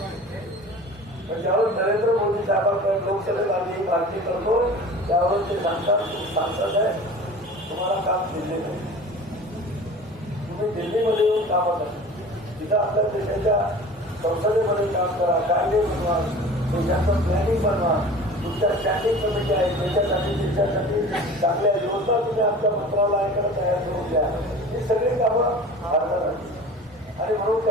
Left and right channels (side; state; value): both; normal; correlation 0.40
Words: पण ज्यावेळेस नरेंद्र मोदी साहेबांकडे लोकसभेत आम्ही मागणी करतो त्यावेळेस ते सांगतात आहे तुम्हाला काम दिले नाही, तुम्ही दिल्लीमध्ये येऊन कामं करा, तिथं आपल्या देशाच्या संसदेमध्ये काम करा, कायदे बनवा, देशाचं प्लॅनिंग बनवा, तुमच्या स्टँडिंग कमिटी आहे त्याच्यासाठी देशासाठी चांगल्या योजना तुम्ही आमच्या मंत्रालयाकडे तयार करून द्या. ही सगळी कामं भारतात आणि म्हणून